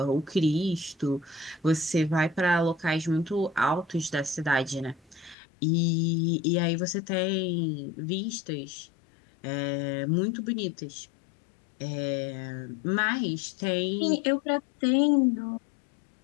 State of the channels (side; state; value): right; drops out; at 5.4 s